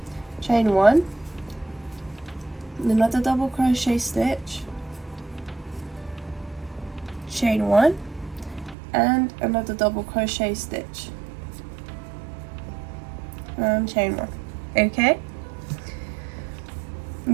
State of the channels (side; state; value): left; drops out; at 8.8 s